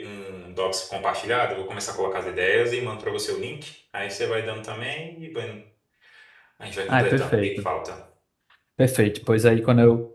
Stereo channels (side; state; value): both; identical; correlation 1.00